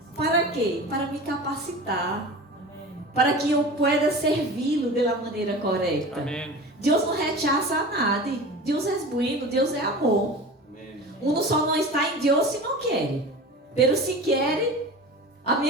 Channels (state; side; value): normal; both; correlation 0.34